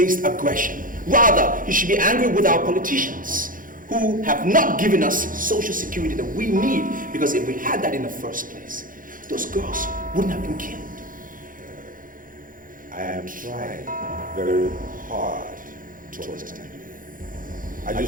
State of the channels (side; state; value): left; late; 0.40 ms